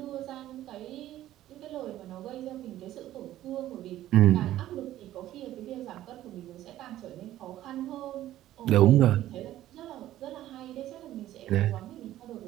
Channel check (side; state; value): left; quieter; 13.7 dB